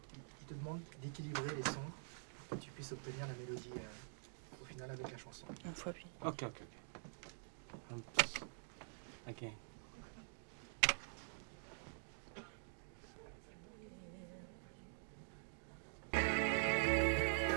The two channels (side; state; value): left; silent; digital silence